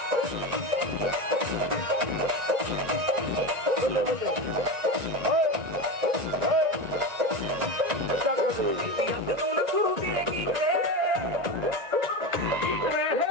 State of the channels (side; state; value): left; late; 1.9 ms